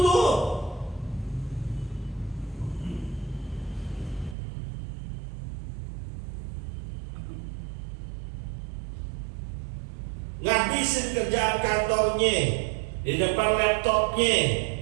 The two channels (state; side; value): drops out; left; at 4.4 s